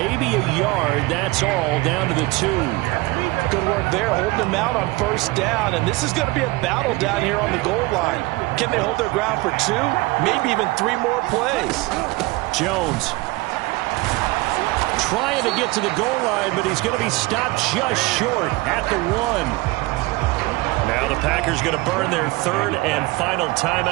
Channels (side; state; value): left; quieter; 22.1 dB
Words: a yard, that's all, down to the 2. Good work there, holding them out on 1st down, and this is going to be a battle down here on the goal line. Can they hold their ground for 2, maybe even 3 more plays? Jones trying to get to the goal line, but he's going to be stopped just short at the 1. Now the Packers going to burn their 3rd and final